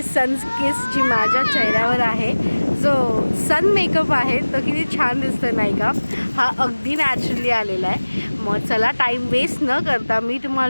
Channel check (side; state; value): both; inverted; correlation -1.00